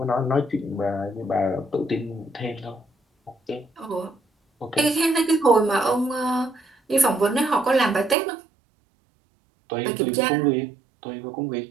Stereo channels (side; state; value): left; drops out; at 8.2 s